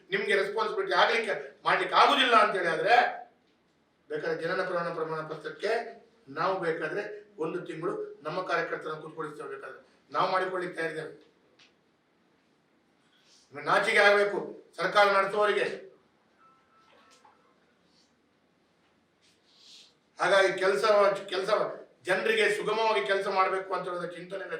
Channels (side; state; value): both; identical; correlation 1.00